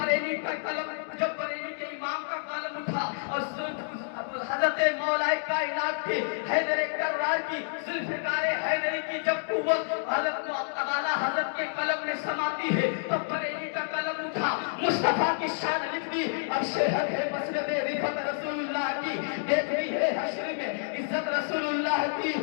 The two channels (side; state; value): right; silent; digital silence